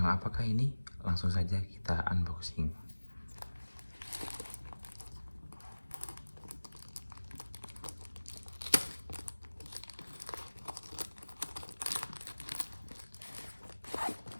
apakah ini? Langsung saja kita unboxing.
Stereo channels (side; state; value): both; inverted; correlation -1.00